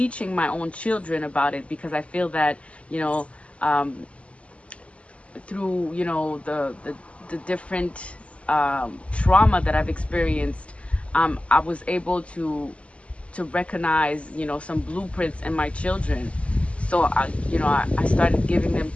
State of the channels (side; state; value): right; late; 0.061 ms